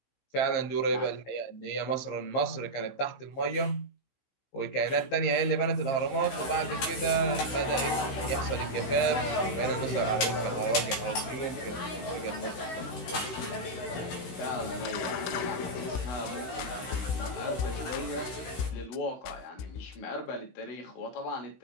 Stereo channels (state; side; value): late; right; 16 ms